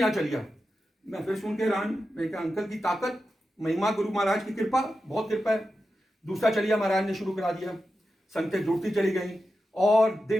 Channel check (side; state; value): both; normal; correlation 0.91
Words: चलिया। मैं फिर सुन के हैरान, मैं कहा अंकल की ताकत, महिमा, गुरु महाराज की कृपा, बहुत कृपा है। दूसरा चलिया महाराज ने शुरू करा दिया, संगतें जुड़ती चली गई और